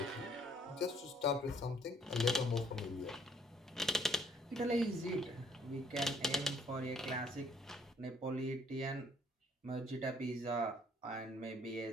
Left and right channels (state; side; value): normal; both; correlation 0.63